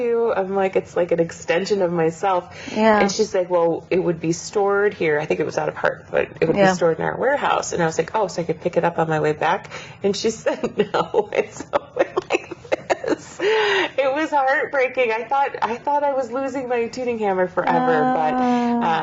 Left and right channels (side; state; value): both; identical; correlation 1.00